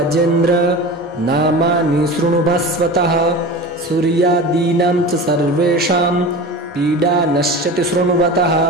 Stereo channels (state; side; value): normal; both; correlation 0.32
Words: नामानि शृणु भास्वतः सूर्यादीनां च सर्वेषां पीडा नश्यति शृण्वतः